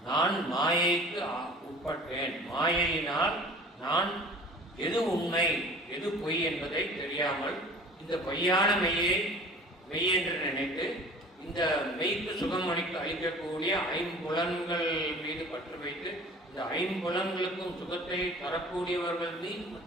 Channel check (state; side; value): normal; both; correlation 0.44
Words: நான் மாயைக்கு உட்பட்டேன். மாயையினால் நான் எது உண்மை எது பொய் என்பதை தெரியாமல் இந்த பொய்யான மெய் என்று நினைத்து இந்த மெய்க்கு சுகம் அளிக்கக்கூடிய ஐம்புலன்கள் மீது பற்று வைத்து இந்த ஐம்புலன்களுக்கும் சுகத்தை தரக்கூடியவர்கள் மீது